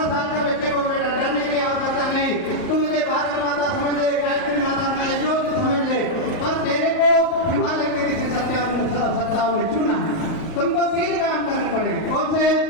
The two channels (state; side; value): late; right; 38 ms